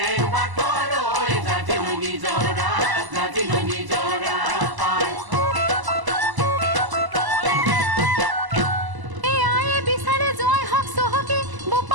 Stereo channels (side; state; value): left; late; 1.0 ms